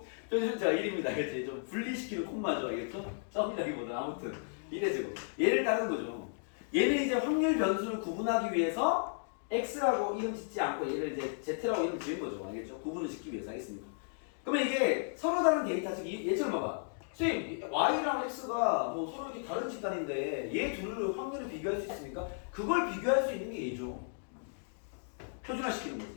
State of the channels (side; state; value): right; silent; digital silence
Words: 표준편차가 1입니다. 알겠지? 좀 분리시키는 콤마죠. 알겠죠? 점이라기보다 아무튼 이래지고 얘를 따르는 거죠. 얘는 이제 확률 변수를 구분하기 위해서 x라고 이름 짓지 않고 얘를 이제 z라고 이름 지은 거죠. 알겠죠? 구분을 짓기 위해서. 알겠습니까? 그러면 이게 서로 다른 데이터 즉 얘처럼 봐봐. 선생님 y랑 x가 뭐 서로 이렇게 다른 집단인데 얘 둘을 확률을 비교할 수 있습니까? 그걸 비교할 수 있는 게 얘죠. 표준화시키는 거지.